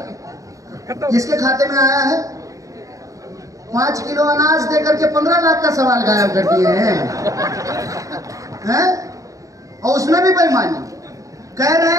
किसके खाते में आया है? 5 किलो अनाज देकर के 15 लाख का सवाल गायब कर दिए हैं? और उसमें भी बेईमानी, कह रहे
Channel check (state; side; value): late; left; 0.16 ms